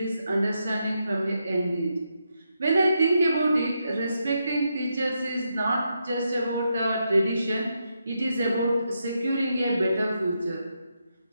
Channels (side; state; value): both; inverted; correlation -0.83